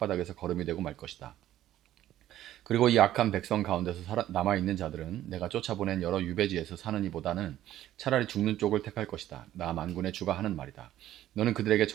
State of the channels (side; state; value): left; quieter; 13.0 dB